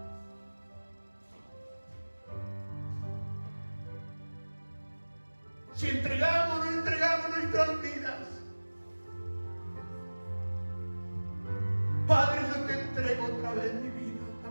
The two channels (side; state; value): both; inverted; correlation -1.00